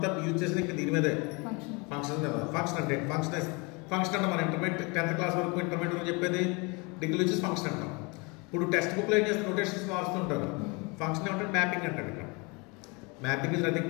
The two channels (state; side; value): quieter; right; 29.1 dB